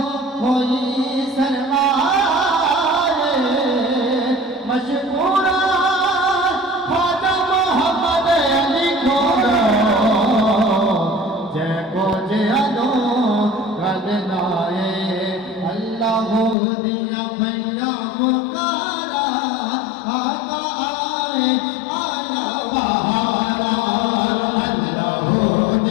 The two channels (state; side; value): drops out; right; at 16.6 s